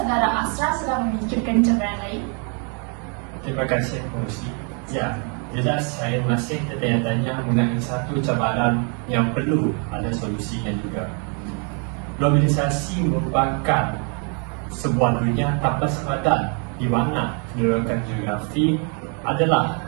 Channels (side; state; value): left; quieter; 38.2 dB